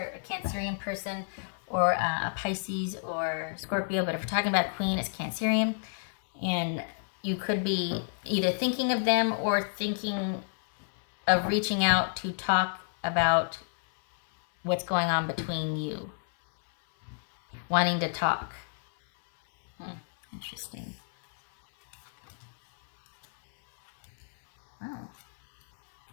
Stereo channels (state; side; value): silent; right; 58 dB below the other